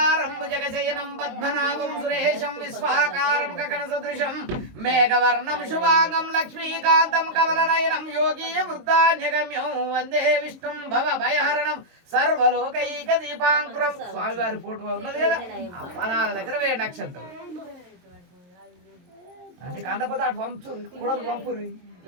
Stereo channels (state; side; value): late; left; 22 ms